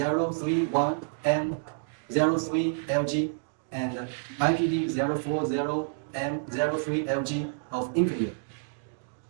and IPD040M03LG of Infineon.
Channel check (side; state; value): left; silent; digital silence